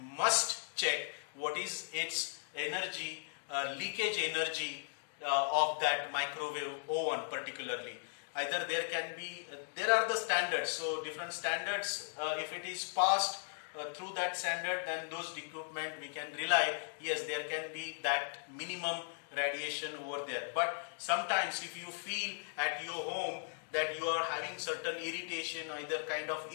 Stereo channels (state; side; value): silent; right; digital silence